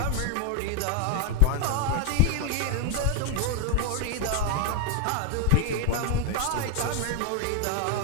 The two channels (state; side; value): different; both; correlation 0.00